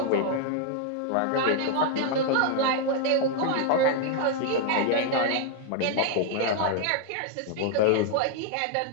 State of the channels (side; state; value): both; different; correlation 0.00